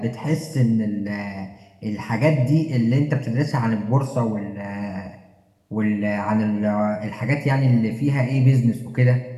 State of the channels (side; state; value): both; identical; correlation 1.00